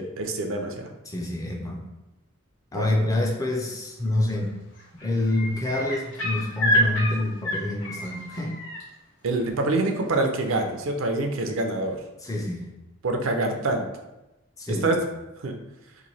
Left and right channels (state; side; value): normal; both; correlation 0.35